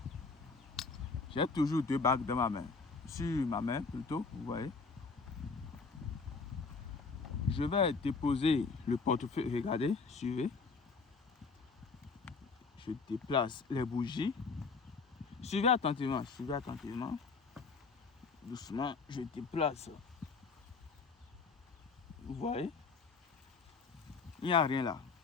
J'ai toujours 2 bagues dans ma main. Sur ma main, plutôt, vous voyez. Je vais déposer le portefeuille. Regardez, suivez. Je déplace les bougies. Suivez attentivement, suivez attentivement. Doucement, je déplace. Vous voyez? Il n'y a rien là.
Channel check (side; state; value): right; quieter; 4.6 dB